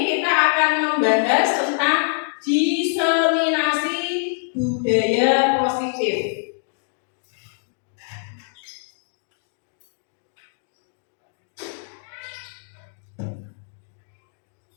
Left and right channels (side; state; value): right; silent; digital silence